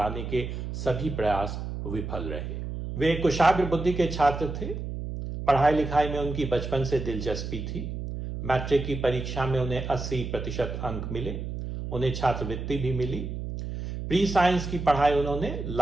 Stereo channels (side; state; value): right; noise; hum, 6 dB below the sound